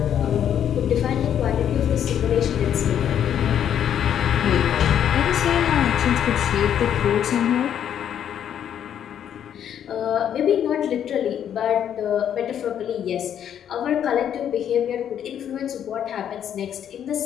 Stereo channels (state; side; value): quieter; right; 9.5 dB